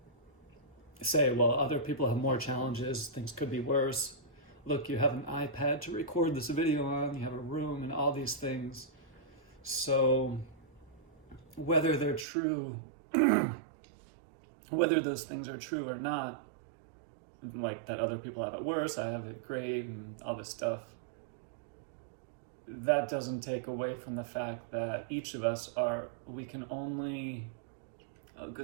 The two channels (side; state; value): left; drops out; at 12.2 s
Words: say, well, other people have more challenges, things could be worse. Look, you have an iPad to record this video on, you have a room and all these things. So whether they're true, whether those things are true or not, like that other people have it worse, I have it great, and all this stuff, that doesn't take away from the fact that each of us we can only, oh